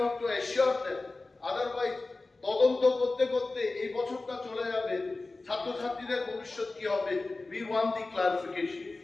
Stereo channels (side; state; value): right; quieter; 3.4 dB